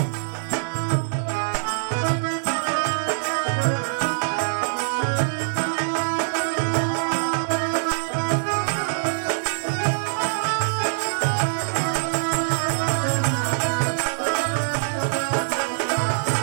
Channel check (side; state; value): left; silent; digital silence